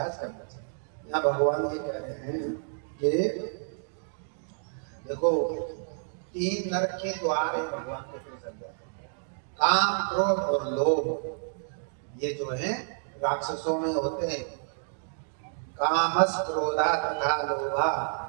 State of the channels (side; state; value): left; silent; digital silence